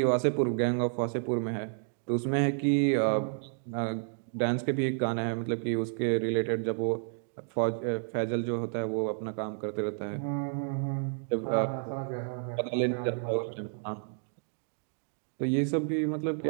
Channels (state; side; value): silent; left; digital silence